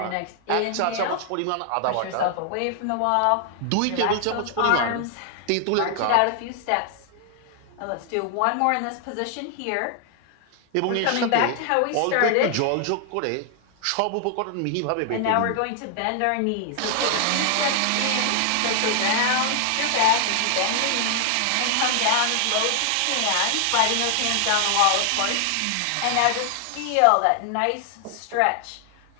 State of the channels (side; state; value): both; different; correlation 0.00